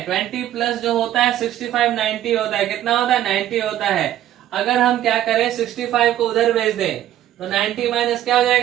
20 प्लस जो होता है 65 90 होता है, कितना होता है 90 होता है। अगर हम क्या करें 65 को उधर भेज दें तो 90 माइनस क्या हो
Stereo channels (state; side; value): quieter; left; 12.4 dB